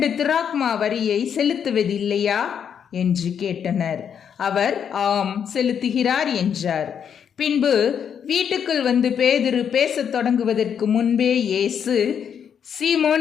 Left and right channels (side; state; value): right; quieter; 7.9 dB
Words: திராக்மா வரியை செலுத்துவதில்லையா என்று கேட்டனர். அவர் ஆம், செலுத்துகிறார் என்றார். பின்பு வீட்டுக்குள் வந்து பேதுரு பேசத் தொடங்குவதற்கு முன்பே இயேசு,